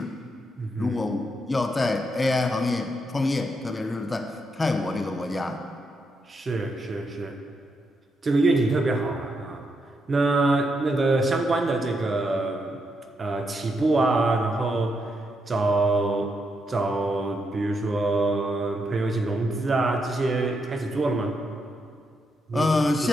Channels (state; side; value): normal; both; correlation 0.81